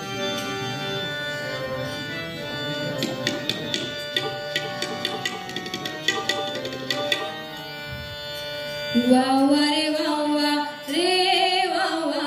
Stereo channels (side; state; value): both; identical; correlation 1.00